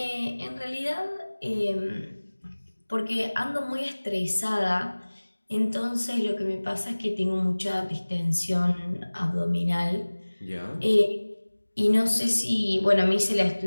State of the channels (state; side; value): inverted; both; correlation -1.00